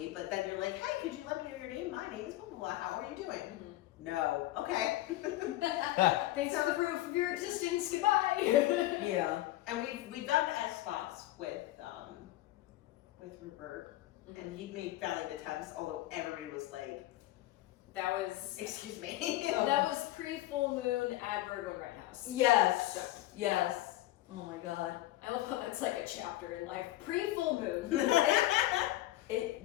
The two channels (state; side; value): quieter; right; 16.2 dB